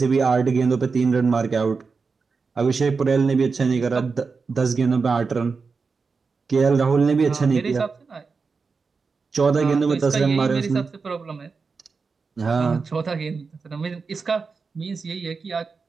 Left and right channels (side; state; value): left; quieter; 4.8 dB